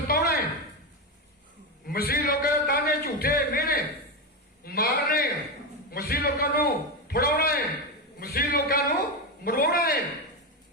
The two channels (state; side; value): normal; both; correlation 0.12